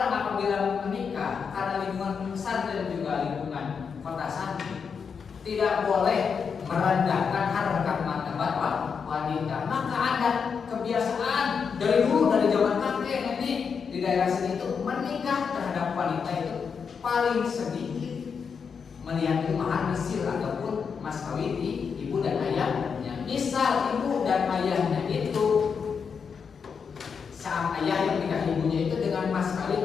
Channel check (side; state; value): right; quieter; 6.1 dB